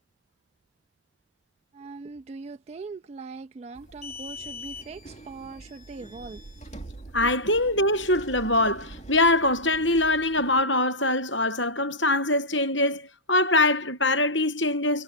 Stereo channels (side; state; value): both; normal; correlation -0.12